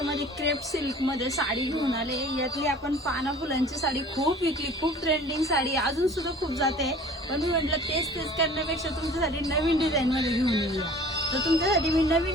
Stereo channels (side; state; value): both; normal; correlation 0.47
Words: क्रेप सिल्क मध्ये साडी घेऊन आले। यातली आपण पाना फुलांची साडी खूप विकली, खूप ट्रेंडिंग साडी अजून सुद्धा खूप जाते, पण मी म्हटलं तेच करण्यापेक्षा तुमच्यासाठी नवीन डिझाईन मध्ये घेऊन येऊया। तर तुमच्यासाठी मी